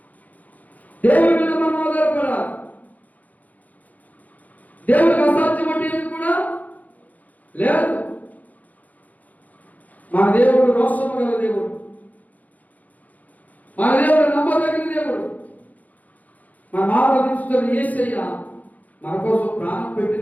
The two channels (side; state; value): right; late; 0.078 ms